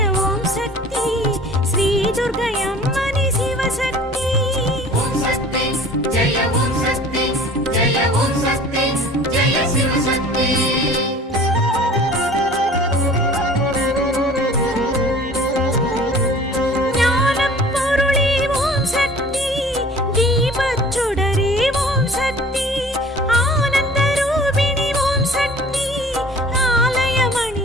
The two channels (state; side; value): normal; both; correlation 0.47